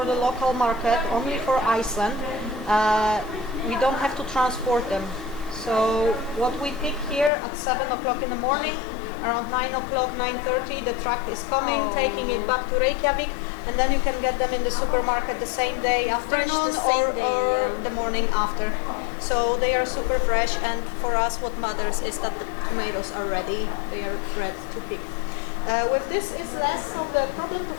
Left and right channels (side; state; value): right; drops out; at 7.3 s